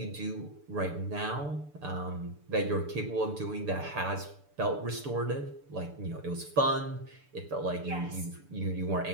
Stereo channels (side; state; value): left; late; 6.8 ms